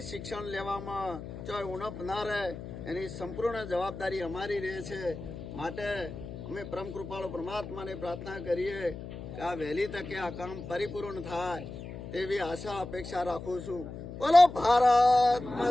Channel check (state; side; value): noise; left; hum, 10 dB below the sound